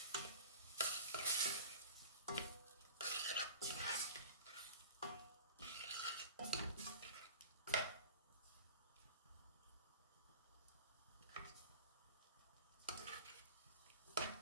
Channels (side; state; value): both; inverted; correlation -0.37